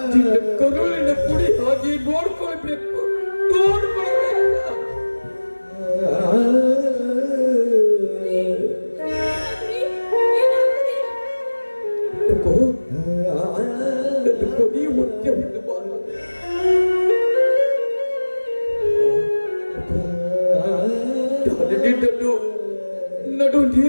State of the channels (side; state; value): both; inverted; correlation -1.00